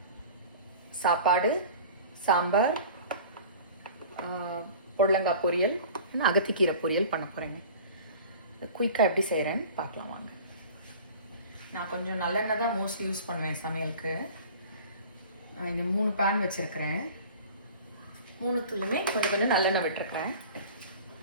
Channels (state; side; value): inverted; both; correlation -0.42